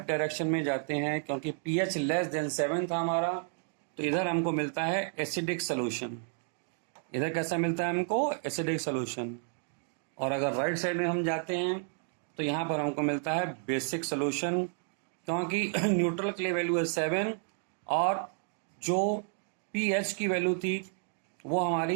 डायरेक्शन में जाते हैं, क्योंकि पीएच लेस देन 7 था हमारा, तो इधर हमको मिलता है एसिडिक सोल्यूशन। इधर कैसा मिलता है हमको, एसिडिक सोल्यूशन। और अगर राइट साइड में हम जाते हैं तो यहाँ पर हमको मिलता है बेसिक सोल्यूशन, क्योंकि न्यूट्रल के लिए वैल्यू है 7 और जो पीएच की वैल्यू थी वो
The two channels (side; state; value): left; silent; 57 dB below the other